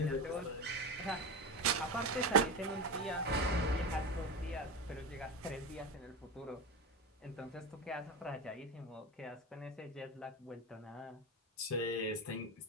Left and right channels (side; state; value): both; normal; correlation 0.20